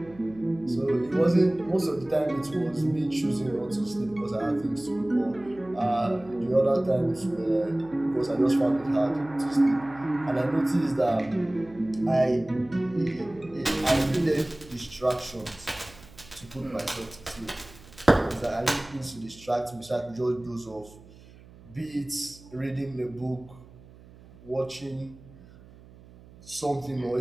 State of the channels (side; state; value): right; noise; hum, 22 dB below the sound